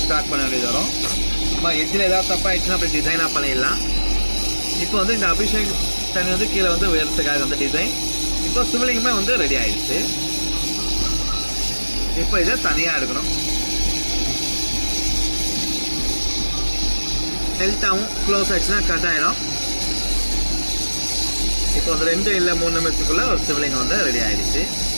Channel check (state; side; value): inverted; both; correlation -1.00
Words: ஸ்டார்ட் பண்ண வேண்டியது வரும். இப்போ எட்ஜில் ஏதாவது தப்பாகிடுச்சுன்னா அப்படி டிசைனாக பண்ணிடலாம். இப்போ வந்து இந்த அபிஷேக் தண்ணி வந்து கீழே வந்து உயரத்துக்காக வந்து டிசைன். இப்போ சிவலிங்கமே வந்து ரெடி ஆகிடுச்சு. இப்போ இதை தனியாக எடுக்கணும். ஹெல்த்தாகவும் க்ளோஸ் ஆகிடுச்சுன்னா கட் ஆகிடும். இப்போ வந்து 2 இல்லை 3 நிமிஷத்துக்குள்ளே ஒரு சிவலிங்கம் வந்து ரெடி ஆகிடுச்சு.